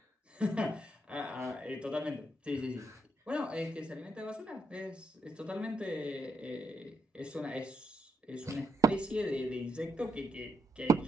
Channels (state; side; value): normal; both; correlation 0.79